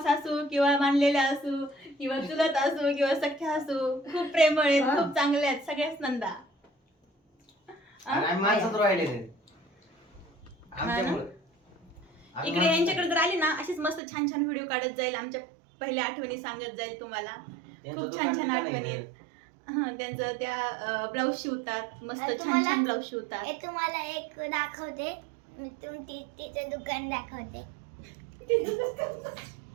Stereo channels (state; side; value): drops out; left; at 14.0 s